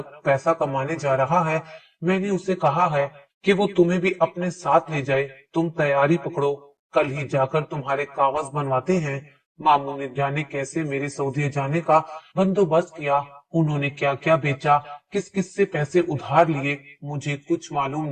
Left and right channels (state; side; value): identical; both; correlation 1.00